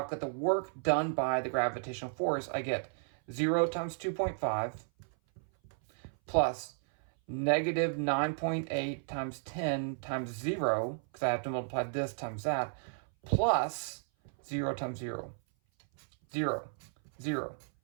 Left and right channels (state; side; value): silent; left; 55 dB below the other